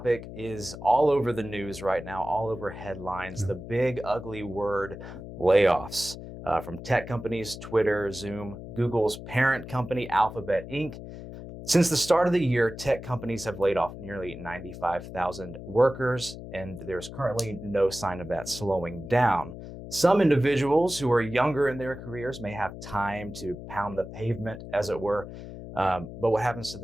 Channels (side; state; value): left; noise; hum, 12 dB below the sound